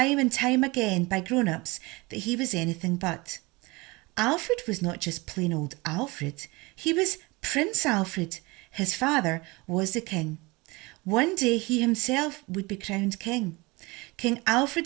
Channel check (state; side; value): quieter; left; 24.3 dB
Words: and time again by grown-ups that he was anything but. Alfred was not just plain old Alfred, he was Prince Alfred. His father was the king. One day he himself would be crowned king. King